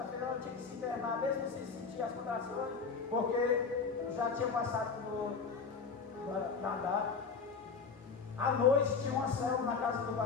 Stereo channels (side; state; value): right; quieter; 5.2 dB